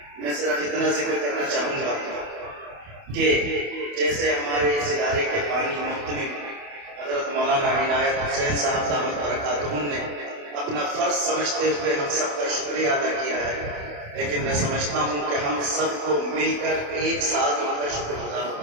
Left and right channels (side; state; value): left; late; 28 ms